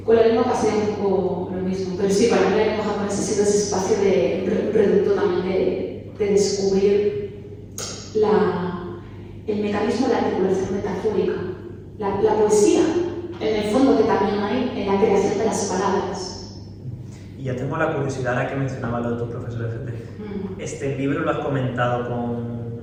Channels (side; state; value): both; identical; correlation 1.00